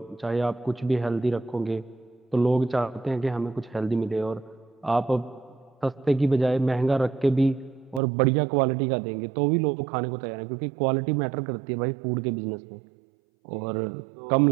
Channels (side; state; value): left; drops out; at 8.0 s